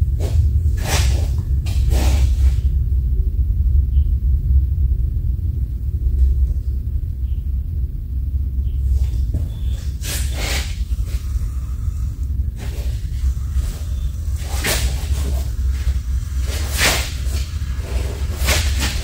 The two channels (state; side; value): identical; both; correlation 1.00